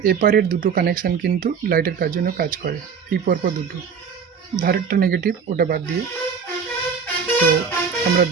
এপারের দুটো কানেকশান কিন্তু লাইটের কাজ জন্য কাজ করে। এই পরপর দুটো, ধারেরটা নেগেটিভ, ওটা বাদ দিয়ে। তো আমরা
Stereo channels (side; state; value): left; quieter; 6.4 dB